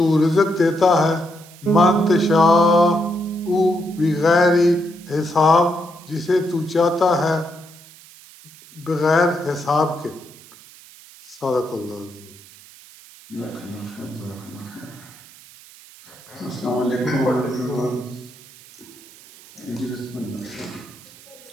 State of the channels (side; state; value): right; noise; hiss, 22 dB below the sound